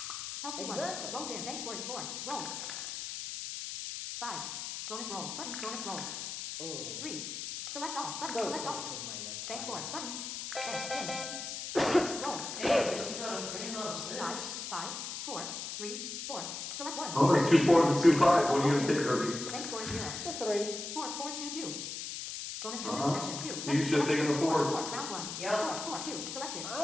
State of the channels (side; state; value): left; noise; hiss, 6 dB below the sound